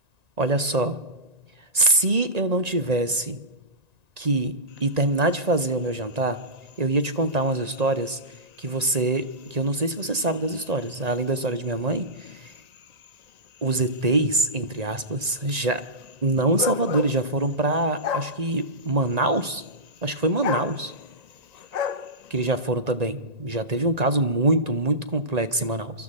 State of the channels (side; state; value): left; late; 1.9 ms